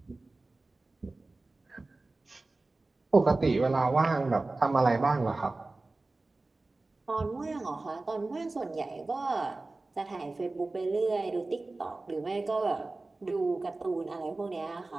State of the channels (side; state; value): left; quieter; 3.2 dB